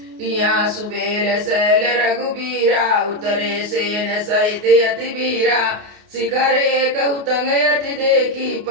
यहाँ सुबेल शैल रघुबीरा, उतरे सेन सहित अति वीरा, शिखर एक उतंग अति देखी,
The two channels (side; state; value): left; late; 29 ms